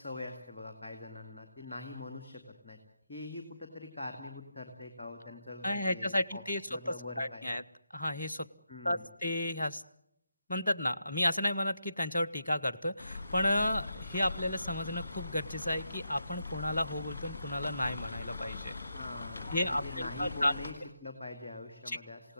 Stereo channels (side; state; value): both; inverted; correlation -0.84